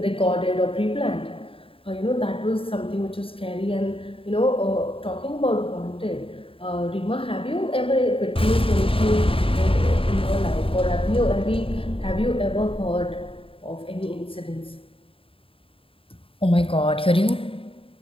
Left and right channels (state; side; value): late; right; 0.27 ms